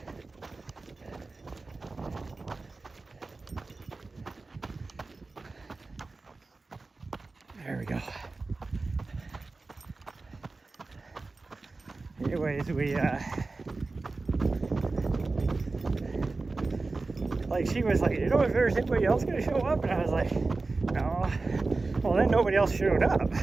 There we go. Anyways, we like, she was like, you know, if there's anybody else gonna show up, and I was like, no. Well, then nobody else showed up,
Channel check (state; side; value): quieter; left; 3.6 dB